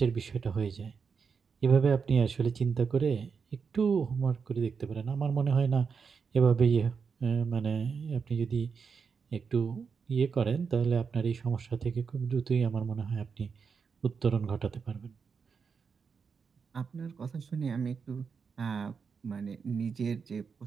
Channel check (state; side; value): quieter; left; 5.8 dB